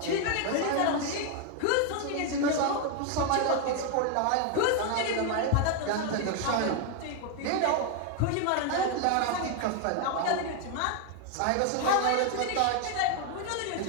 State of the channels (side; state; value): both; different; correlation 0.01